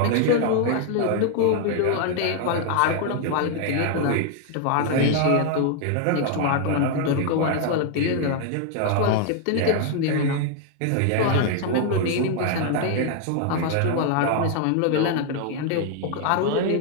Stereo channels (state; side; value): different; both; correlation 0.00